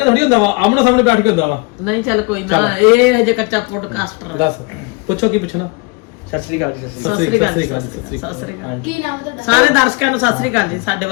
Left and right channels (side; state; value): right; quieter; 29.5 dB